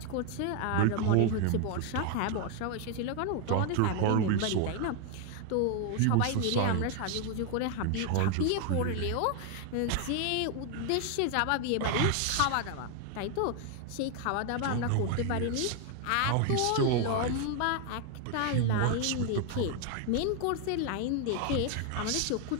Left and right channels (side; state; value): both; different; correlation 0.01